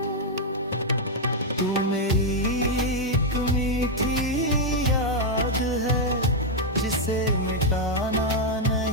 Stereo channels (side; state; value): both; normal; correlation -0.01